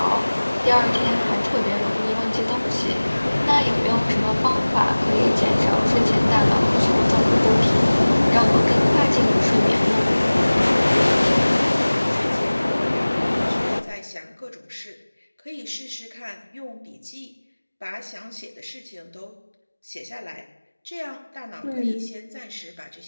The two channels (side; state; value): both; inverted; correlation -1.00